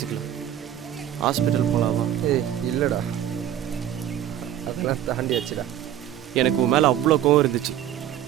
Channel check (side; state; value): left; quieter; 11.1 dB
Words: ஹாஸ்பிட்டல் போகலாமா? இல்லைடா, அதெல்லாம் தாண்டியாச்சுடா. எனக்கு உன் மேலே அவ்வளோ கோவம் இருந்துச்சு.